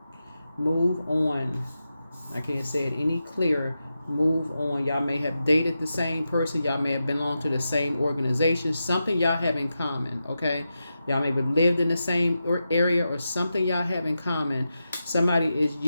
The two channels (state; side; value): inverted; both; correlation -0.90